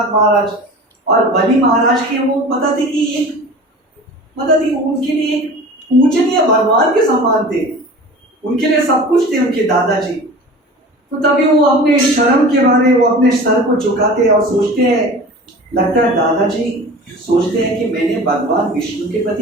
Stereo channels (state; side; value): normal; both; correlation 0.38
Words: महाराज और बलि महाराज के, वो पता थे कि उनके लिए एक पूजनीय भगवान के समान थे, उनके लिए सब कुछ थे उनके दादाजी। तो तभी वो अपने शर्म के बारे, वो अपने सर को झुकाते हैं और सोचते हैं, लगता है दादाजी सोचते हैं कि मैंने भगवान विष्णु के